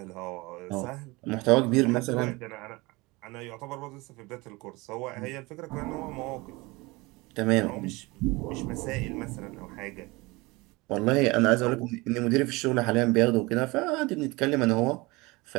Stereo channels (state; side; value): quieter; left; 23.6 dB